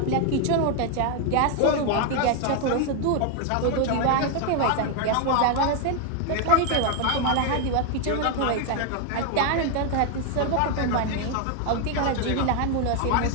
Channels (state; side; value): different; both; correlation 0.00